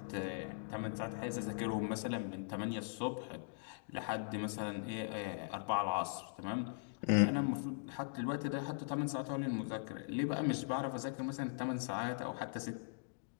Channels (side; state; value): right; silent; digital silence